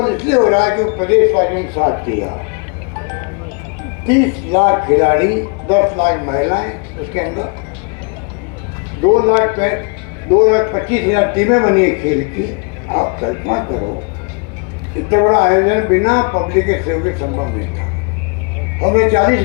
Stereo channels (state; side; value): quieter; right; 34.4 dB